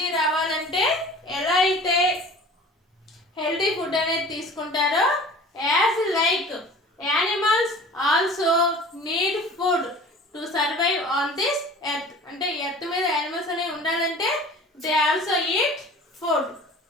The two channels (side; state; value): both; normal; correlation 0.43